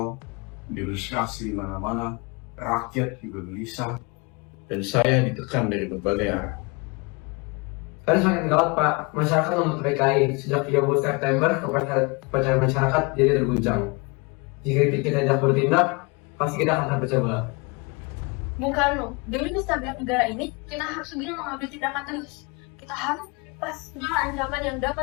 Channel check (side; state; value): right; quieter; 29.4 dB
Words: demonstrasi di mana-mana, rakyat juga gelisah, dan saya ditekan dari berbagai arah. Kan semakin gawat Pak, masyarakat menuntut PKI. Sejak 30 September, kepercayaan masyarakat jadi terguncang. Jika kita tidak bertindak, pasti kita akan terpecah belah. Bung Karno, demi kestabilan negara ini, kita harus segera mengambil tindakan tegas. Kita harus lepas segala ancaman yang